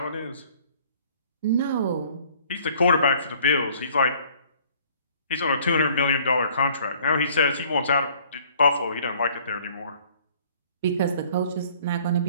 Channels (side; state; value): both; inverted; correlation -0.56